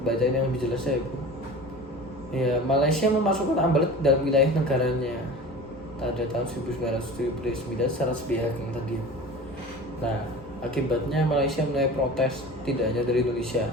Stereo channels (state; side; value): normal; both; correlation 0.37